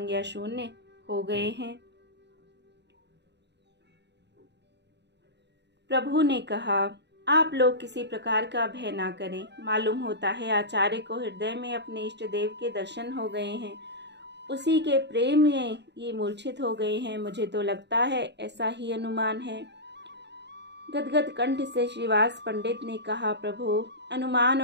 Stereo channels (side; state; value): left; late; 0.50 ms